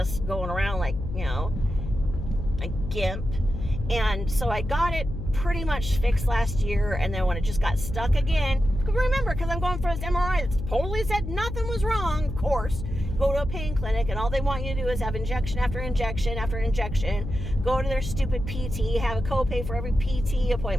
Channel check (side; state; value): left; noise; hum, 6 dB below the sound